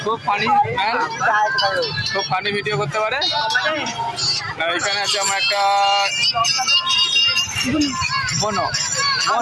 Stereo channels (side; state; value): both; identical; correlation 1.00